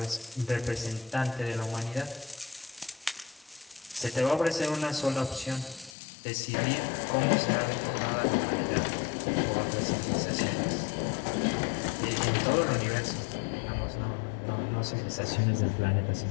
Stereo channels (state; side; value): drops out; right; at 6.0 s